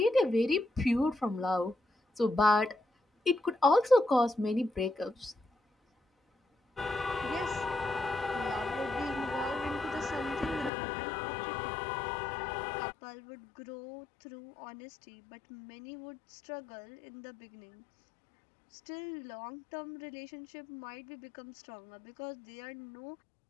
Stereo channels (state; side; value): drops out; right; at 10.7 s